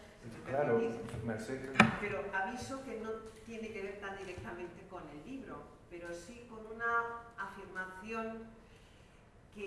si me Claro, permitís, Merced. pero aviso que no tiene que ver tan directamente con el libro, pero sí con una afirmación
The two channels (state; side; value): identical; both; correlation 1.00